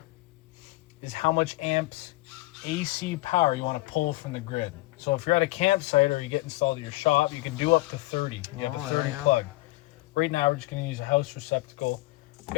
is how much amps AC power you want to pull from the grid. So if you're at a campsite or you get installed at your shop, you can do up to 30. You have a 30 plug. Right now we're just going to use a house receptacle. We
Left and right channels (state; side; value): quieter; right; 20.4 dB